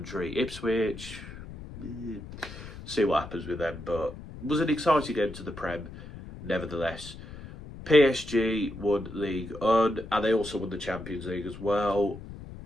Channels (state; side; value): noise; left; rumble, 13 dB below the sound